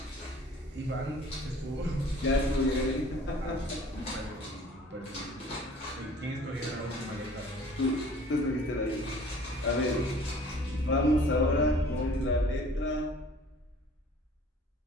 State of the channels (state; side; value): normal; both; correlation 0.50